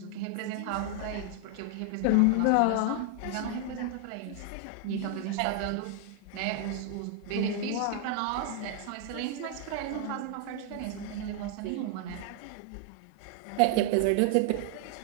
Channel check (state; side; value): different; both; correlation 0.00